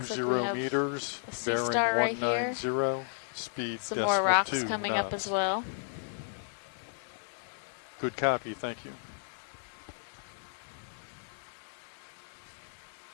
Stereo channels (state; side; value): silent; right; digital silence